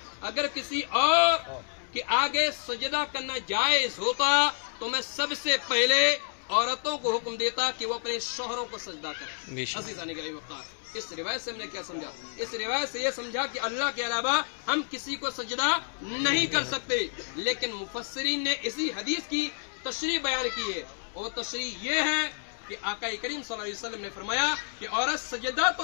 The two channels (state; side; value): silent; right; digital silence